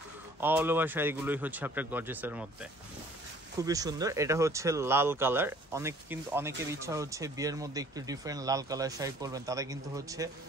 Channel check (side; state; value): both; normal; correlation 0.55